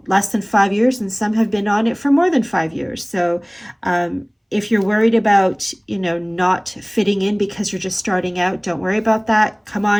less than 5 years, and some have been on it for more than 5 years. So if you're worried about, not fitting in because you're just starting out, don't worry about that. Come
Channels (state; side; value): identical; both; correlation 1.00